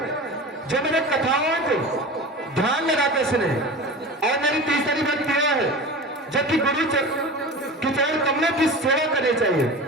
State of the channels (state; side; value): normal; both; correlation 0.32